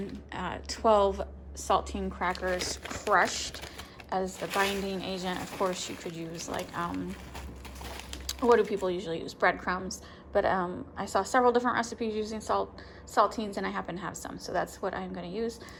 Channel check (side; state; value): both; identical; correlation 1.00